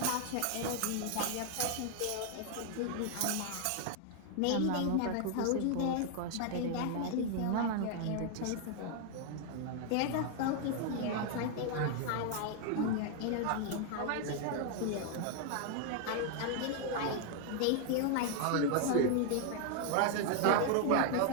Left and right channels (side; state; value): both; different; correlation 0.00